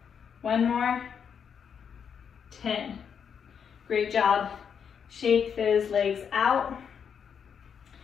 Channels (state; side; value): quieter; right; 7.2 dB